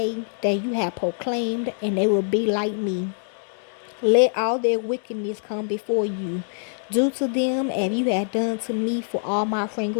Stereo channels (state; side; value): silent; right; digital silence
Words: that you have proclaimed, and they will be like me. Let all their wickedness come before you. Do to them as you have done to me for all my